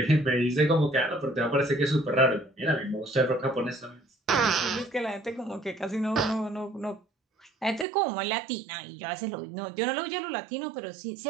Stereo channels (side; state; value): left; drops out; at 7.9 s